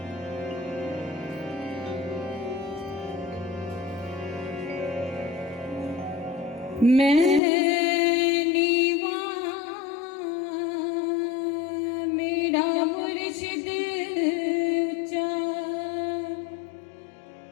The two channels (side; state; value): right; drops out; at 7.4 s